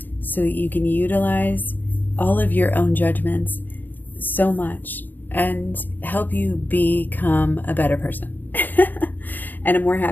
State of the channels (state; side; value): late; right; 0.087 ms